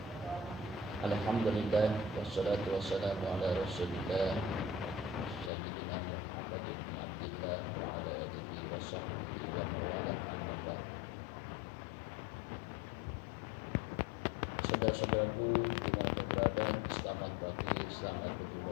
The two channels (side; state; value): right; drops out; at 5.5 s